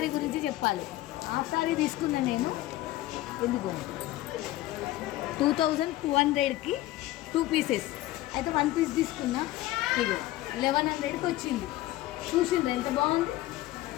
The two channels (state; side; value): quieter; right; 16.2 dB